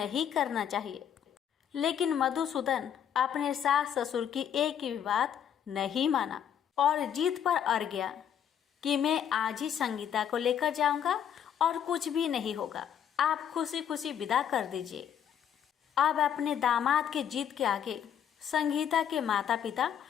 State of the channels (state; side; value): quieter; right; 9.0 dB